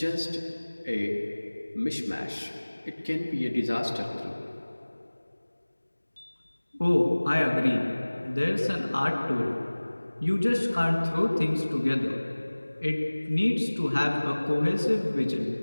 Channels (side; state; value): both; inverted; correlation -1.00